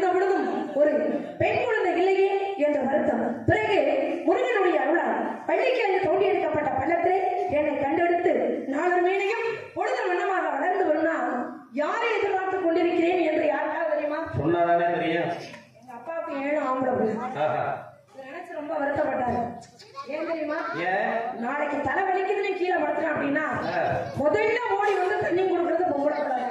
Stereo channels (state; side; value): identical; both; correlation 1.00